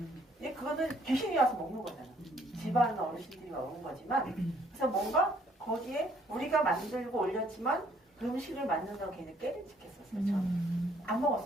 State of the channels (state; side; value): normal; both; correlation 0.64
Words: 근데 그거는 귀신이 와서 먹는 거잖아. 집안 어르신들이 먹는 거지만 그래서 뭔가 거기에 우리가 만들고 올렸지만 그 음식을 만든다고 걔는 깨름직했었어요. 저는 안